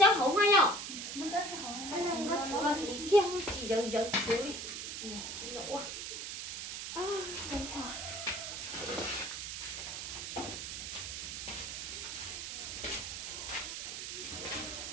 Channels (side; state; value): right; noise; hiss, 6 dB below the sound